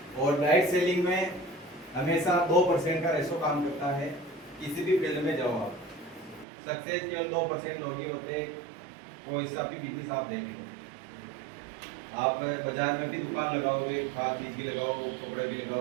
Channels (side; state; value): left; drops out; at 6.5 s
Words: और डायरेक्ट सेलिंग में हमेशा 2% का रेशो काम करता है। किसी भी फील्ड में जाओ आप, सक्सेस केवल 2% लोग ही होते हैं। कोई सा भी बिजनेस आप देख लो, आप बाजार में भी दुकान लगाओगे, खाद बीज भी लगाओ, कपड़े भी